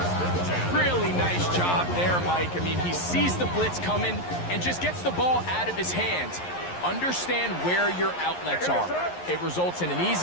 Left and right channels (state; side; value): late; right; 11 ms